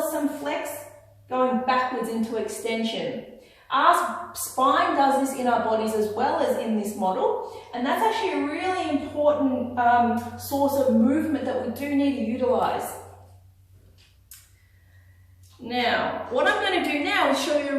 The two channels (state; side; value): identical; both; correlation 1.00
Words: some flex going backwards into extension. Our spine does this in our bodies as well as in this model, and that's actually a really important source of movement that we do need to utilize. Now, what I'm going to do now is show you